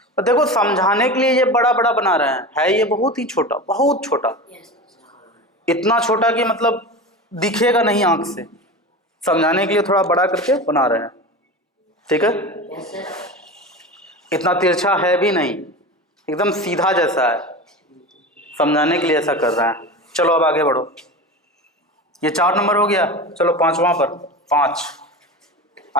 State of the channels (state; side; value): normal; both; correlation 0.28